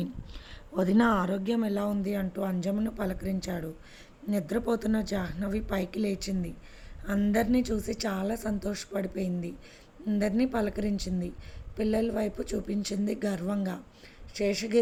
వదిన ఆరోగ్యం ఎలా ఉంది అంటూ అంజమ్మను పలకరించాడు. నిద్రపోతున్న జాహ్నవి పైకి లేచింది. అందరినీ చూసి చాలా సంతోషపడిపోయింది. అందరినీ పలకరించింది. పిల్లల వైపు చూపించింది గర్వంగా.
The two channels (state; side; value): identical; both; correlation 1.00